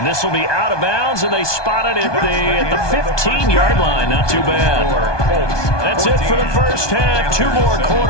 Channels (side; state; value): right; late; 1.2 ms